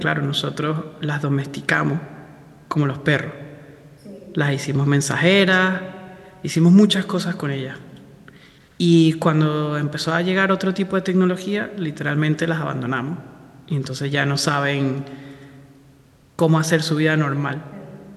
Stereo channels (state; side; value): identical; both; correlation 1.00